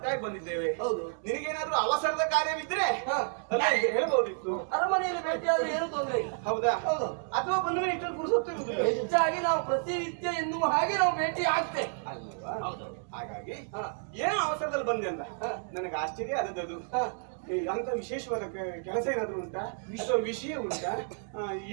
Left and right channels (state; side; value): silent; left; 57 dB below the other